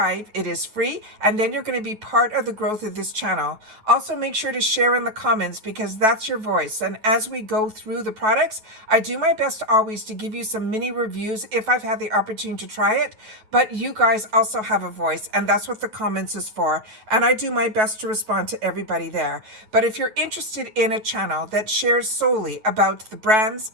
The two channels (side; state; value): left; late; 9.2 ms